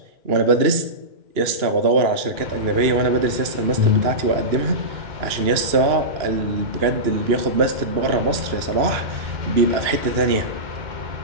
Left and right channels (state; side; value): late; left; 2.9 ms